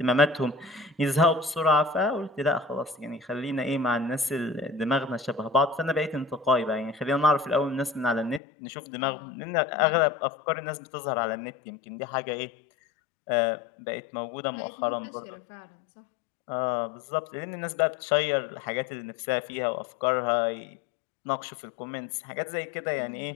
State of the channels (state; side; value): drops out; right; at 8.4 s